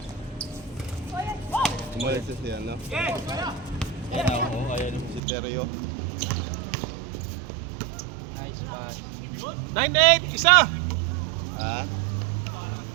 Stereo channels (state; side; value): drops out; left; at 5.2 s